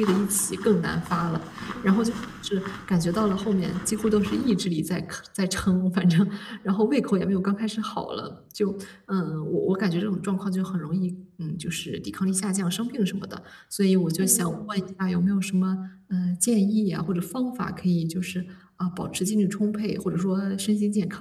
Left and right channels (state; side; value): identical; both; correlation 1.00